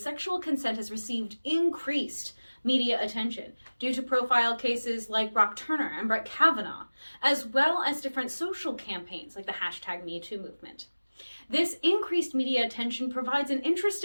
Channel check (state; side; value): inverted; both; correlation -1.00